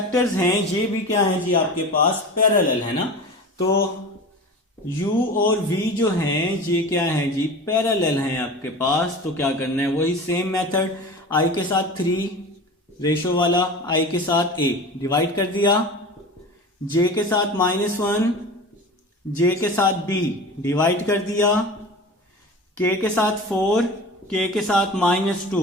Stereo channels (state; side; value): normal; both; correlation 0.34